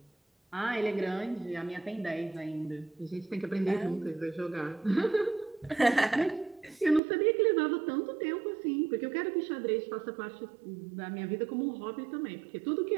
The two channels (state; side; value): drops out; left; at 7.0 s